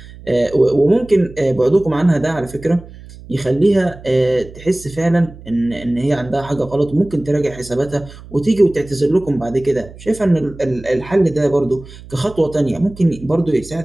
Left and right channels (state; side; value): noise; right; hum, 18 dB below the sound